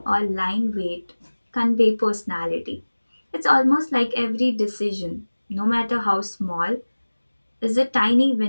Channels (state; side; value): inverted; both; correlation -1.00